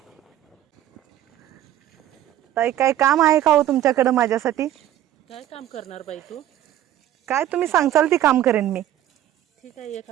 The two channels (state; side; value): quieter; left; 12.3 dB